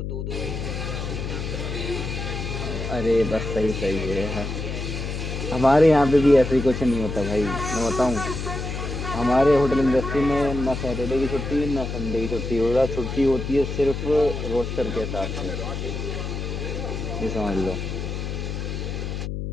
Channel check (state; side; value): noise; left; hum, 4 dB below the sound